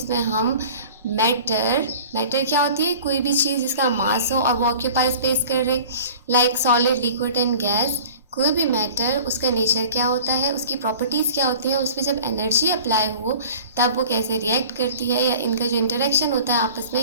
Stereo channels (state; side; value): inverted; both; correlation -0.43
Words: हम मैटर क्या होती है? कोई भी चीज़ जिसका मास हो और वो ऑक्यूपाई स्पेस कर रहे, like solid, liquid and gas. कोई भी मैटर, उसका नेचर क्या होता है, उसकी प्रॉपर्टीज़ क्या होती हैं, उस पर जब एनर्जी अप्लाई हो तब वो कैसे रिएक्ट करती है, या इनका जो इंटरेक्शन होता है आपस में,